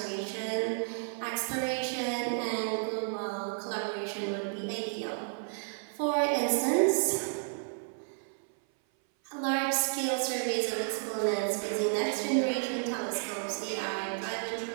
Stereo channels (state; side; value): silent; left; 56 dB below the other